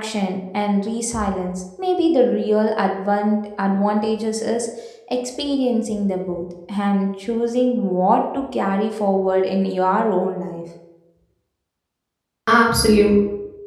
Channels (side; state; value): both; identical; correlation 1.00